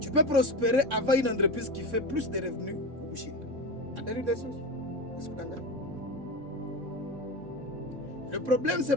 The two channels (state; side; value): late; left; 3.6 ms